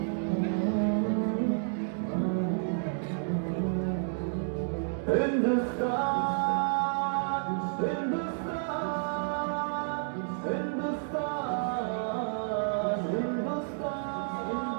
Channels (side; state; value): left; silent; digital silence